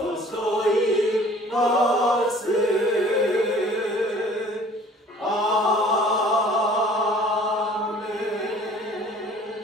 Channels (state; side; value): normal; both; correlation 0.51